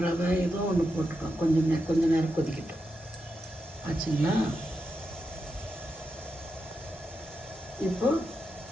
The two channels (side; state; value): both; normal; correlation 0.87